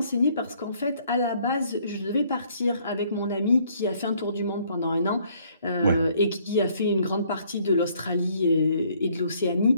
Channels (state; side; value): inverted; both; correlation -0.64